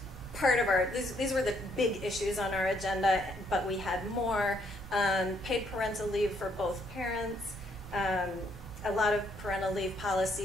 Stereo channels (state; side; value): normal; both; correlation 0.71